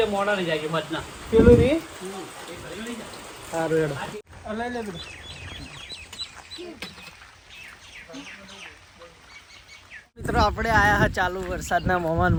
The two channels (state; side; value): identical; both; correlation 1.00